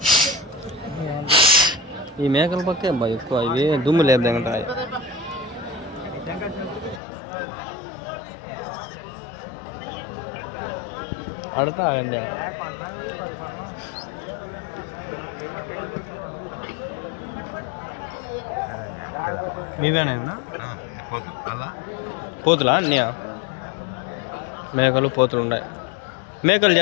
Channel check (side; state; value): right; drops out; at 7.0 s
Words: ఈ మేకల పక్కే బాగా ఎక్కువ. ఇవి దుమ్ము లేపుతాయి. అడతా అండి. మీవేనా పోతులా అన్నీ? మేకలు పోతులు ఉన్నాయి. మేకలు